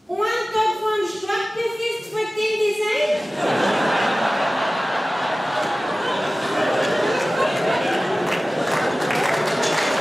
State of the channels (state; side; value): normal; both; correlation 0.96